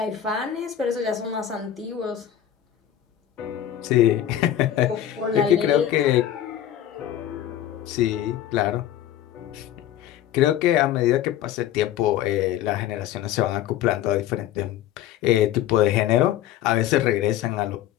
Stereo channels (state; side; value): quieter; right; 11.4 dB